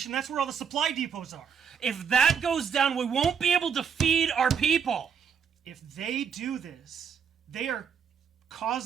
that's where all the supply depots are. If that goes down, we won't be able to feed our people. If they do this, they are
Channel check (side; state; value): left; quieter; 7.2 dB